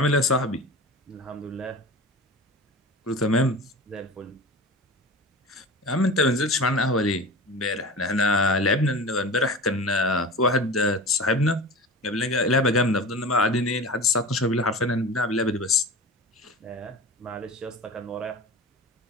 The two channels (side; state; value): both; normal; correlation 0.32